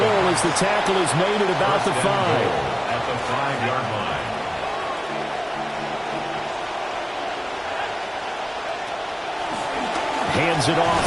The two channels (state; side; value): identical; both; correlation 1.00